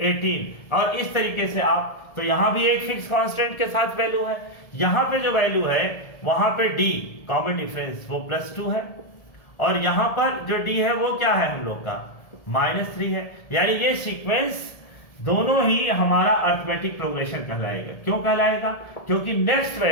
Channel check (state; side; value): late; right; 1.7 ms